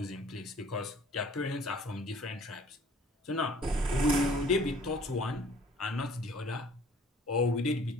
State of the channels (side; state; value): both; normal; correlation 0.54